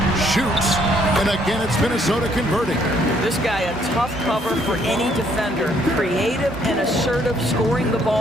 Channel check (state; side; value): normal; both; correlation 0.67